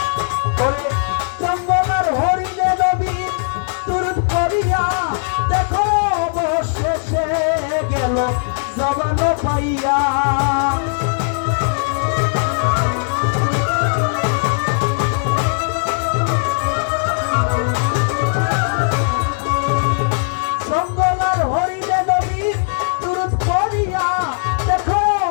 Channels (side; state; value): right; silent; digital silence